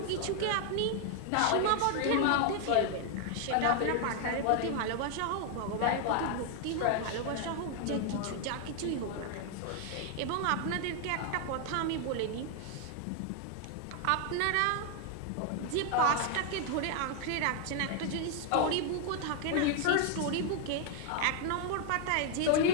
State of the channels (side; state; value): both; different; correlation 0.00